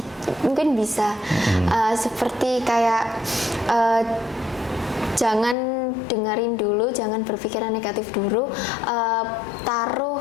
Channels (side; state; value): right; drops out; at 5.6 s